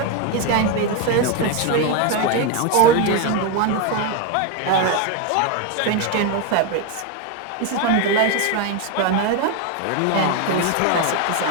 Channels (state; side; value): different; both; correlation 0.02